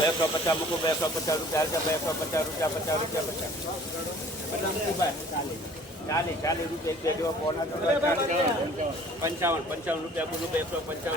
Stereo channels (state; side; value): normal; both; correlation 0.51